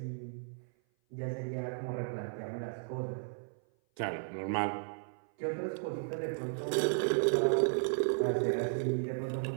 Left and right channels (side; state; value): left; silent; 55 dB below the other